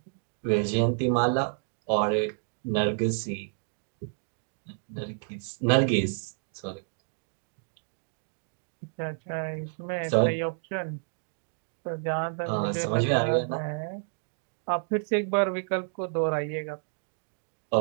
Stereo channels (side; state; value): left; silent; digital silence